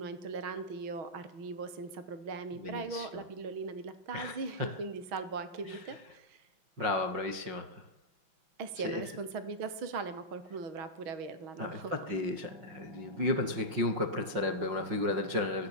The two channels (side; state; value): left; late; 5.6 ms